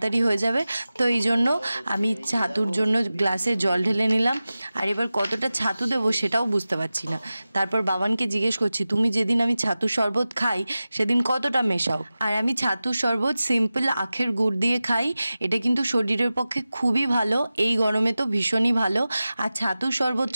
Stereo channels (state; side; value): inverted; both; correlation -0.95